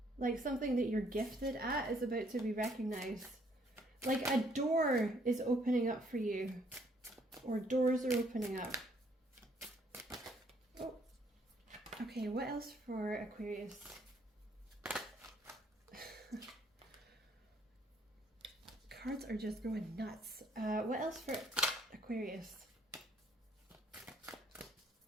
like something that you're gifted at, is about to be recognized. Like a door is opening up for you, or doors are opening up. Oh, okay, what else for Aquarius? Cards are just going nuts. What else for Aquarius?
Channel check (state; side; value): normal; both; correlation 0.66